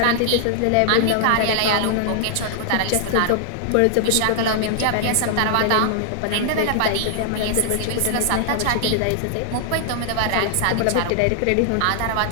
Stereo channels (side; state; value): both; different; correlation 0.00